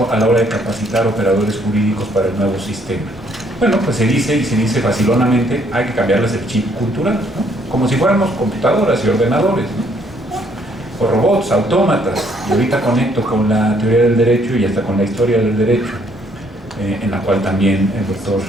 a la hora de capacitar operadores jurídicos para el nuevo sistema? Bueno, pues se dice, y se dice facilonamente, hay que cambiarles el chip cultural, ¿no? Como si fuéramos computadoras y ordenadores, ¿no? O robots, autómatas, y ahorita conecto con la teoría del derecho y hasta con la historia del derecho, en la cual también el doctor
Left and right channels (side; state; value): both; normal; correlation 0.66